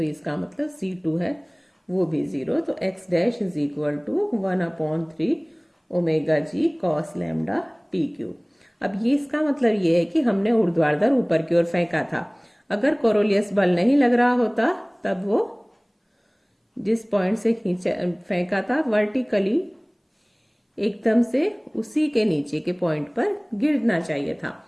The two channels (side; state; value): both; identical; correlation 1.00